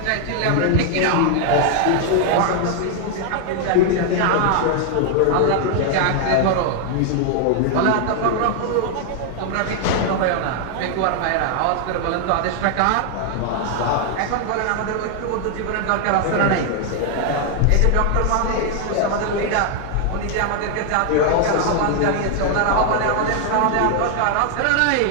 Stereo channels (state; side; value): different; both; correlation 0.00